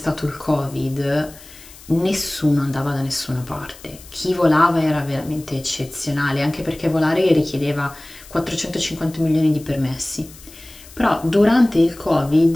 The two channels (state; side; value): noise; left; hiss, 20 dB below the sound